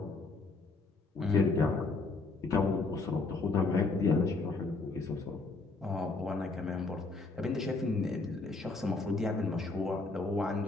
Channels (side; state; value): right; quieter; 3.6 dB